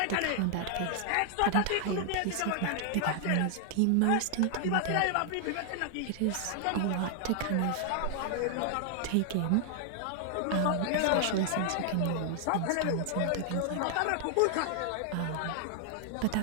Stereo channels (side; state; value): both; different; correlation 0.00